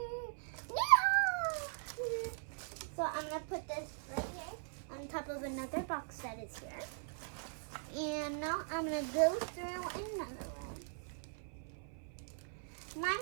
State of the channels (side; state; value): left; silent; 51 dB below the other